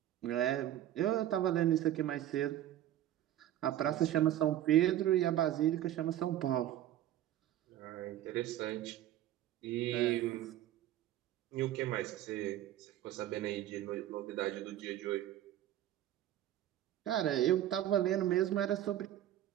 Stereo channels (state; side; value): quieter; left; 12.6 dB